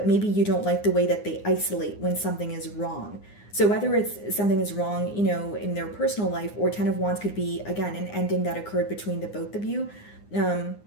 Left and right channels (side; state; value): right; late; 9.7 ms